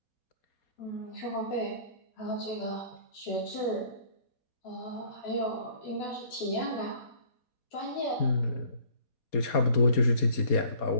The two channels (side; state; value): right; late; 4.2 ms